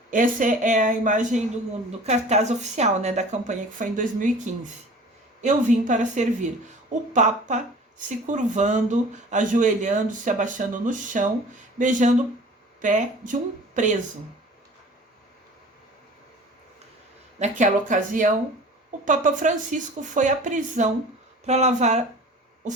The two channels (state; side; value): normal; both; correlation 0.44